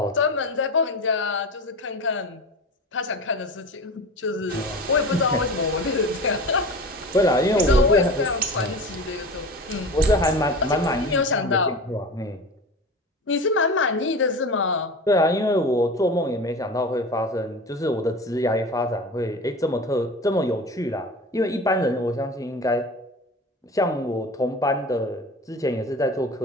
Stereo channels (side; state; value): both; normal; correlation 0.32